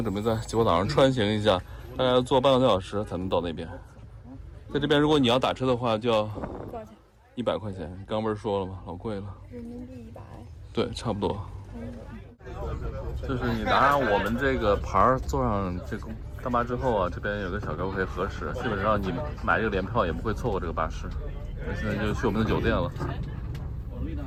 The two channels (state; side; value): identical; both; correlation 1.00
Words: 准备在吉坡岛上穿行一下，大概要坐半个多小时才能到那边。在这边，如果你要打车的话，就要多少钱？100块钱。刚不是说了吗？老贵了。人民币100。对，差不多。就是你拿上我们这个牌儿，坐上这个大巴之后啊，这边有个小哥可以核实，基本上你买这个联票也不会错过这个巴士。那现在就去我们的酒店了。我